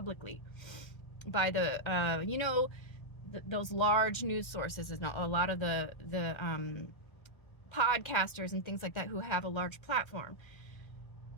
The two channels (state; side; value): late; right; 1.4 ms